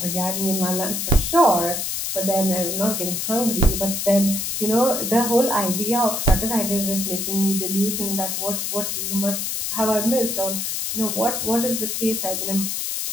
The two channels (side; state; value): left; noise; hiss, 2 dB below the sound